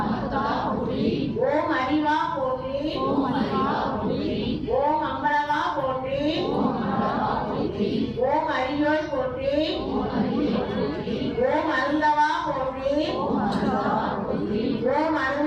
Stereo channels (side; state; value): both; identical; correlation 1.00